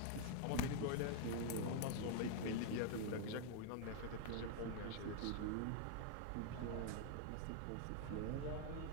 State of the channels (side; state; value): both; different; correlation 0.00